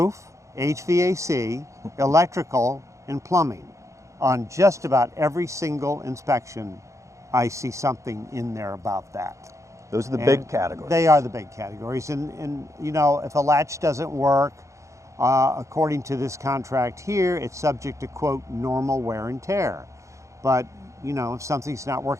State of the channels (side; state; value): left; late; 0.15 ms